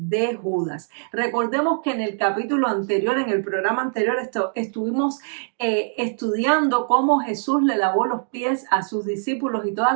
Judas. Recordemos que en el capítulo anterior, en el programa anterior, estuvimos estudiando cómo Jesús le lavó los pies a sus discípulos y todas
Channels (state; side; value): silent; left; 64 dB below the other